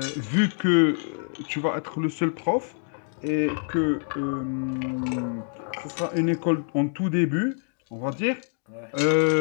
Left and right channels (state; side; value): silent; right; digital silence